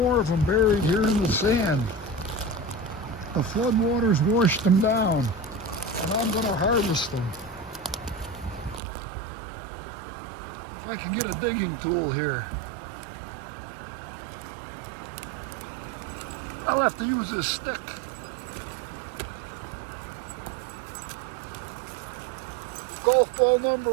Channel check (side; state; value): left; drops out; at 8.8 s